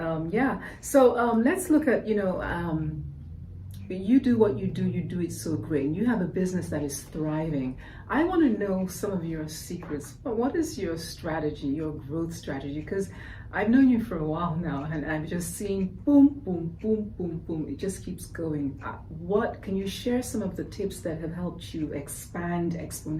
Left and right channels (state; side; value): identical; both; correlation 1.00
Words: Yeah. So let's look at, you know, you do what you do it so great. You have a business that is thriving. I want to know some of your secrets. What is your strategy, your growth strategy? Because I've known you for a while now, and I've just seen boom, boom, boom, boom, boom. It just keeps going. What can you share some of the tips that have helped you expand